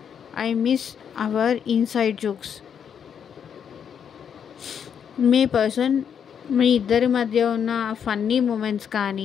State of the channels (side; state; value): right; quieter; 7.8 dB